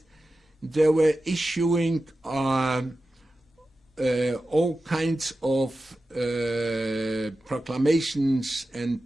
they were issuing all kinds of proclamations and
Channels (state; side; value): normal; both; correlation 0.93